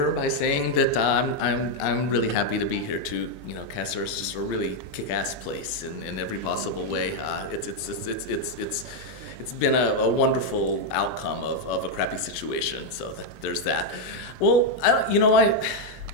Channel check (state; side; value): normal; both; correlation 0.01